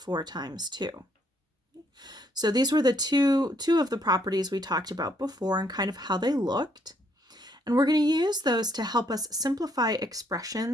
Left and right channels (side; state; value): both; normal; correlation 0.70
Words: times 2. So these were the two of the properties we talked about before and kind of how they looked. And we're going to use those to help us simplify